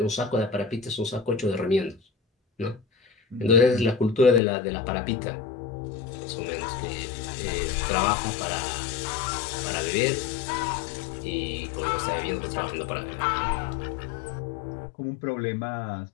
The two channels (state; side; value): drops out; right; at 4.4 s